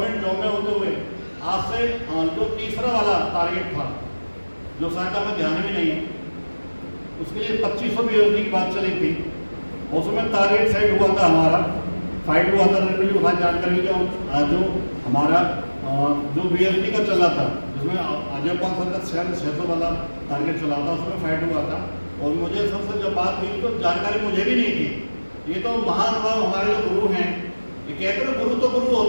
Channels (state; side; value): inverted; both; correlation -1.00